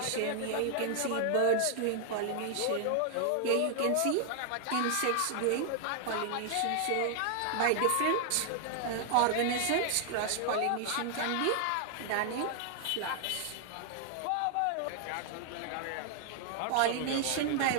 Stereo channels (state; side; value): different; both; correlation 0.00